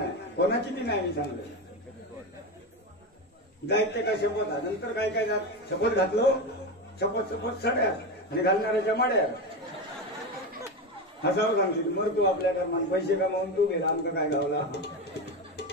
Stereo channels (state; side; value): normal; both; correlation 0.18